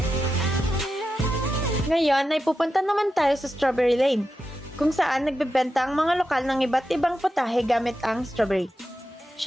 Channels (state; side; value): normal; both; correlation 0.89